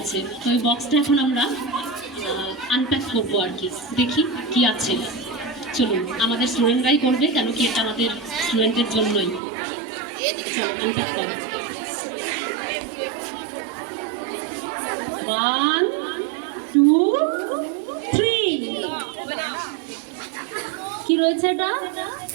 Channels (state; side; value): drops out; left; at 9.4 s